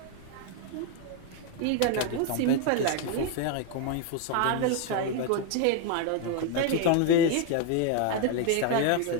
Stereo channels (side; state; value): both; different; correlation 0.01